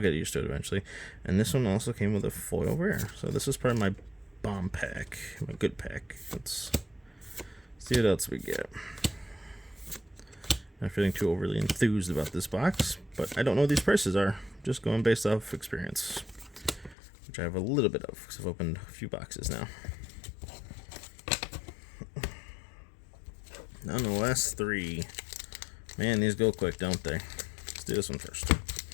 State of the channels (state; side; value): drops out; right; at 16.9 s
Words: used to it eventually. And this one also came with a foil rare. So this is part of my bomb pack, my good pack. Let's see what else we get. Not feeling too overly enthused about this box, but I don't know what these prices are. Just going based off experience, which I have a little bit of because I've opened a few boxes now. On the last three. Man, these go quick, don't they? Let's do this one first.